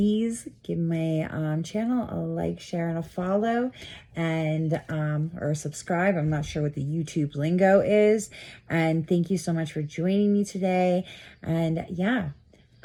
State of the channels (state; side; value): identical; both; correlation 1.00